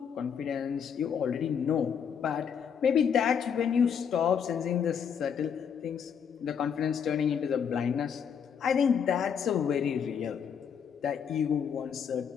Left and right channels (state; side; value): quieter; right; 7.4 dB